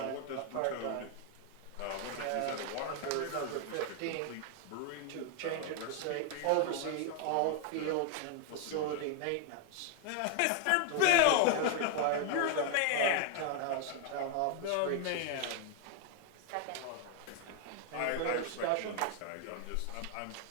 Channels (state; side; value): different; both; correlation 0.00